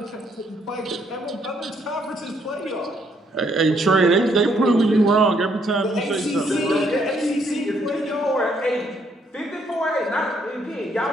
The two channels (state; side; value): normal; both; correlation 0.70